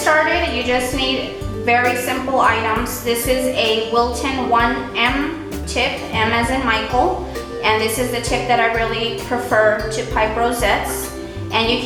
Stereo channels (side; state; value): both; identical; correlation 1.00